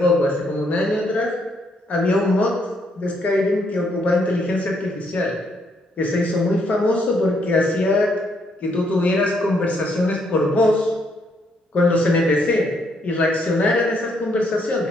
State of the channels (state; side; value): normal; both; correlation 0.73